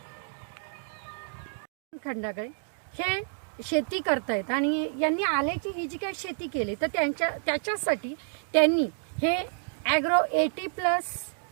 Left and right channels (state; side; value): silent; left; digital silence